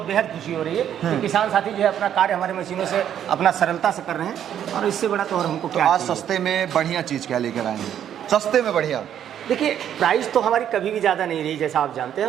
बेहद खुशी हो रही है कि किसान साथी जो है अपना कार्य हमारे मशीनों से अपना सरलता से कर रहे हैं। और इससे बड़ा तो और हमको क्या आज सस्ते में बढ़िया चीज क्या लेकर आएंगे? सस्ते में बढ़िया। देखिए, प्राइस तो हमारी कभी भी ज़्यादा नहीं रही, जैसा आप जानते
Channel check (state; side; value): quieter; left; 9.9 dB